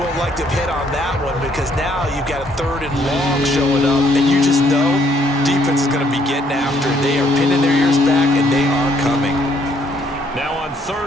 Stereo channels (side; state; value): both; normal; correlation 0.68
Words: won't like to hit on that one because now you've got a 3rd and long showing up. And you just know defense is going to be getting after it. They are pinning their ears back, and they are coming. Now on